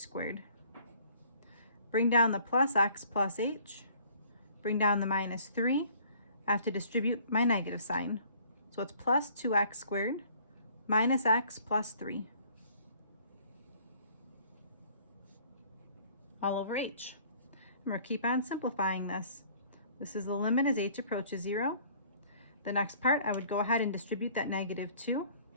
Bring down the plus x plus h, bring down the minus 3. I have to distribute my negative sign. So it's plus 2x squared minus x plus 3. All over h. And we'll keep on simplifying this. This is the limit as h approaches 0. The next part, I would go ahead and distribute that negative 2.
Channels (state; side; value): inverted; both; correlation -0.56